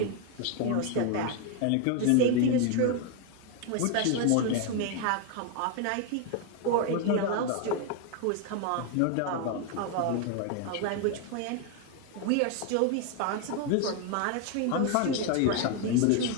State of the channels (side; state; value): both; different; correlation 0.01